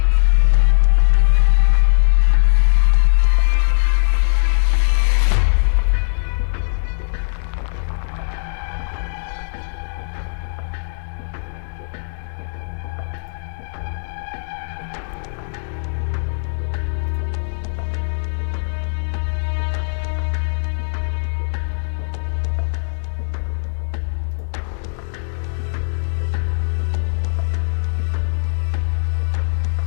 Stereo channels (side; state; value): right; silent; digital silence